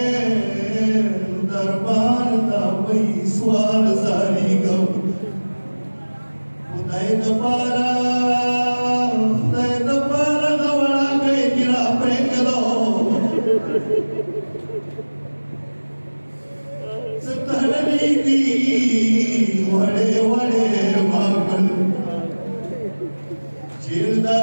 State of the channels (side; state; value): both; inverted; correlation -1.00